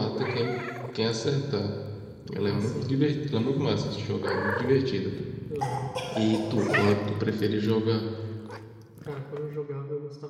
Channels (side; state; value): both; identical; correlation 1.00